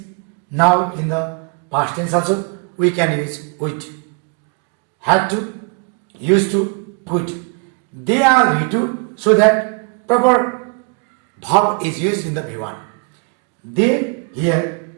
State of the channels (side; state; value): left; quieter; 34.0 dB